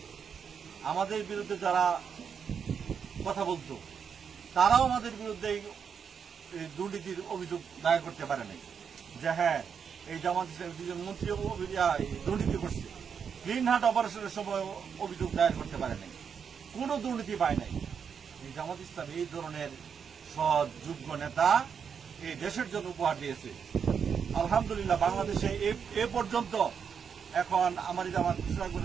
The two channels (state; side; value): quieter; left; 6.9 dB